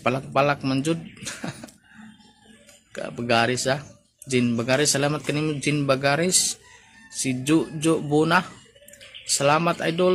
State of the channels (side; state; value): both; identical; correlation 1.00